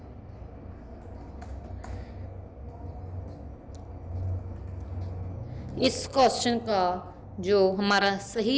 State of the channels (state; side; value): identical; both; correlation 1.00